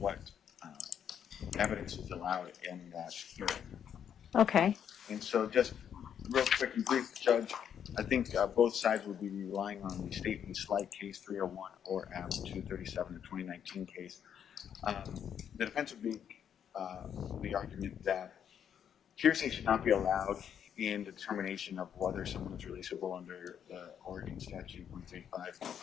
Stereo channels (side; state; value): right; quieter; 8.7 dB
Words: evidence is allowed in that hearing. Okay. And so just real quick and brief, Judge, I think both sides will be relying on the state v. Slight case 301 or M 237, the 2019 case. The defense would be the argument that hearsay should not be allowed in the determination of whether someone is releasable under the Oregon statute